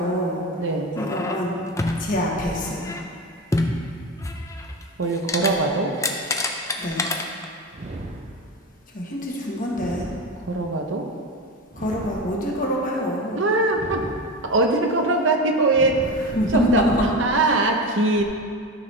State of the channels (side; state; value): both; normal; correlation 0.23